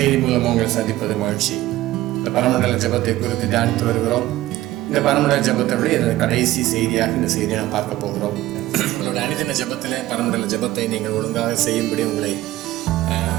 மூலம் உங்களை சந்திப்பது மகிழ்ச்சி. இந்த பரமண்டல ஜபத்தை குறித்து தியானித்து வருகிறோம். இந்த பரமண்டல ஜபத்தை கடைசி செய்தியாக இந்த செய்தியை நாம் பார்க்க போகிறோம். உங்களோட அனுதின ஜபத்தில் பரமண்டல ஜபத்தை நீங்கள் ஒழுங்காக செய்யும்படி உங்களை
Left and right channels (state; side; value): quieter; left; 15.9 dB